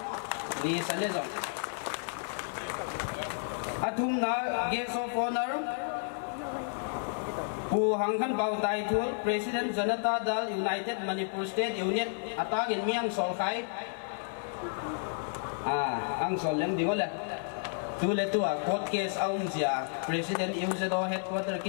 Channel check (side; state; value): right; silent; 57 dB below the other